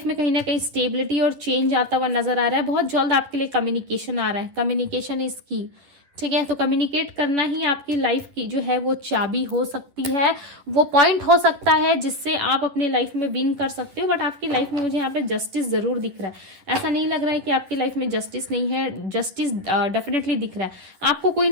में कहीं ना कहीं स्टेबिलिटी और चेंज आता हुआ नजर आ रहा है। बहुत जल्द आपके लिए कम्युनिकेशन आ रहा है। कम्युनिकेशन इज की, ठीक है। तो कम्युनिकेट करना ही आपकी लाइफ की जो है वो चाबी हो सकती है, वो पॉइंट हो सकता है जिससे आप अपने लाइफ में विन कर सकते हो। बट आपकी लाइफ में मुझे यहाँ पे जस्टिस जरूर दिख रहा है। ऐसा नहीं लग रहा है कि आपकी लाइफ में जस्टिस नहीं है, जस्टिस डेफिनेटली दिख रहा है। आपको कोई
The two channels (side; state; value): left; late; 11 ms